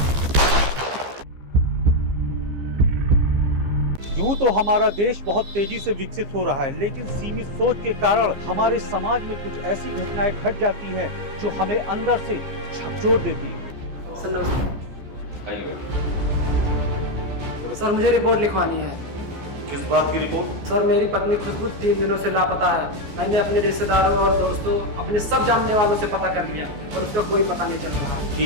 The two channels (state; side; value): late; left; 15 ms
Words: यूं तो हमारा देश बहुत तेजी से विकसित हो रहा है, लेकिन सीमित सोच के कारण हमारे समाज में कुछ ऐसी घटनाएं घट जाती हैं जो हमें अंदर से झकझोर देती है। सर मुझे रिपोर्ट लिखवानी है। किस बात की रिपोर्ट? सर मेरी पत्नी खुशबू 3 दिनों से लापता है। मैंने अपने रिश्तेदारों और दोस्तों, अपने सब जानने वालों से पता कर लिया और उसका कोई पता नहीं चल रहा।